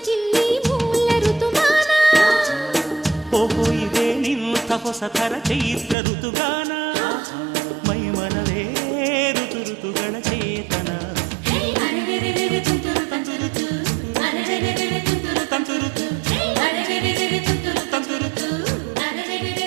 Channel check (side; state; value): left; drops out; at 6.0 s